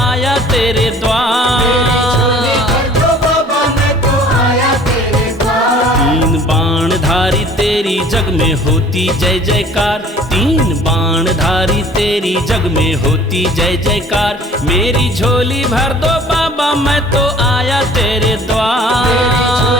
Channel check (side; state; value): both; normal; correlation 0.51